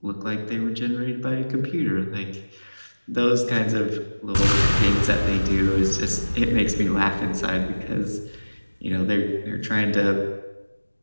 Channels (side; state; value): both; inverted; correlation -1.00